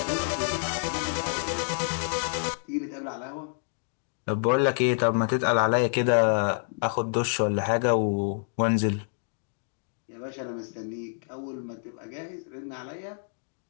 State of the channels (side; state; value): right; silent; digital silence